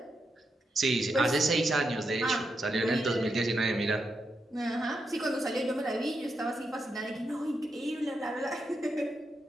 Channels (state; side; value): normal; both; correlation 0.84